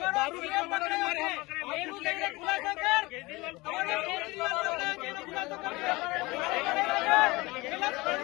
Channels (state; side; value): quieter; right; 22.4 dB